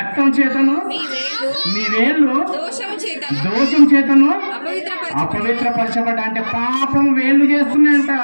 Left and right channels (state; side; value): inverted; both; correlation -1.00